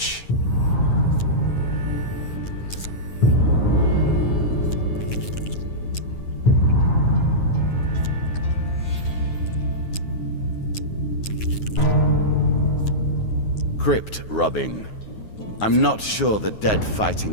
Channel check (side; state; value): right; late; 9.5 ms